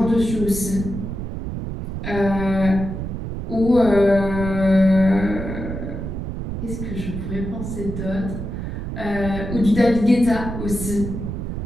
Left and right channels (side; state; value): right; noise; rumble, 6 dB below the sound